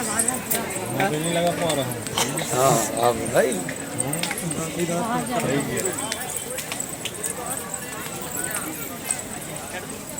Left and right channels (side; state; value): both; identical; correlation 1.00